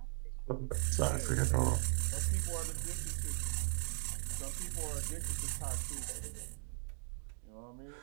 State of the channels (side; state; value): left; silent; 52 dB below the other